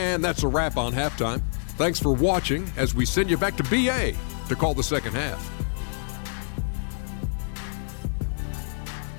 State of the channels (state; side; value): silent; right; digital silence